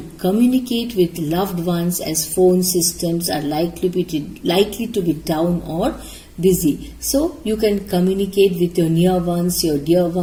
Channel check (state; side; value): identical; both; correlation 1.00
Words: communicate with loved ones as phone systems are likely to be down or busy. So you can communicate with your near ones, your dear